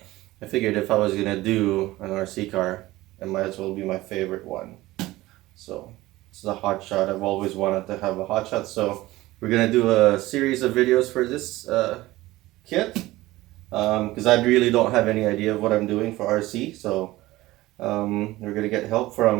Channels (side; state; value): left; quieter; 18.0 dB